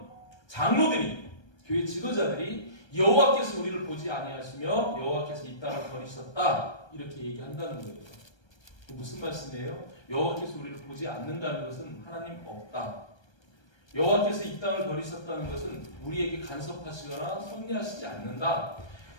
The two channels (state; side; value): late; right; 1.3 ms